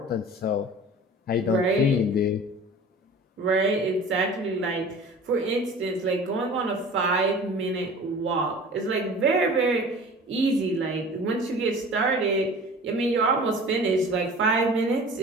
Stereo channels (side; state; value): both; normal; correlation 0.42